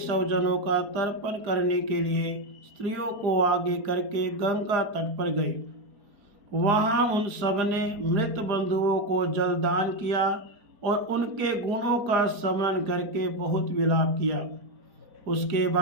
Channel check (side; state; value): left; late; 4.4 ms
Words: का तर्पण करने के लिए स्त्रियों को आगे करके गंगा तट पर गए। वहां उन सब ने मृत बंधुओं को जलदान किया और उनके गुणों का स्मरण करके बहुत विलाप किया। उसके